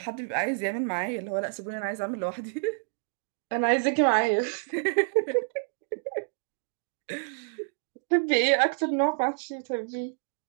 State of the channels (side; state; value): left; silent; digital silence